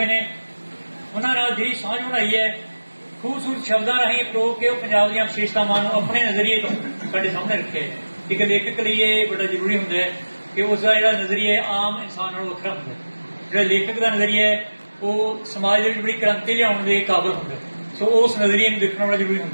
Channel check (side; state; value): both; inverted; correlation -1.00